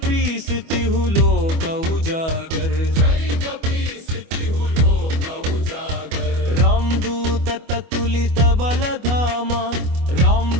तिहु लोक उजागर जय कपीस तिहु लोक उजागर रामदूत ततुलित बलधामा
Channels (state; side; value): late; left; 25 ms